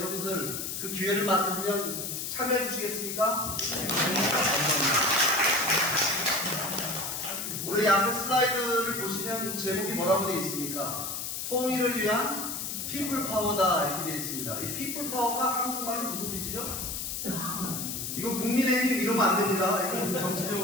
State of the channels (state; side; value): noise; left; hiss, 4 dB below the sound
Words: 그 기회를 만들면 참여해 주시겠습니까? 감사합니다. 우리 앞에 슬라이드를 보시면 제목이 뭐라고 되어 있습니까? 통일을 위한 피플 파워다 이렇게 되어 있습니다. 이 피플 파워가 한국말이 무슨 뜻이죠? 이거 국민의힘 이러면 안 됩니다. 이거